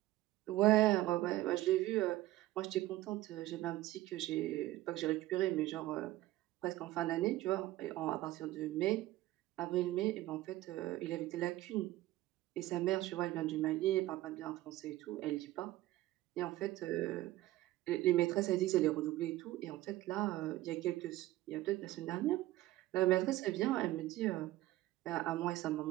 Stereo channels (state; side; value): quieter; left; 16.1 dB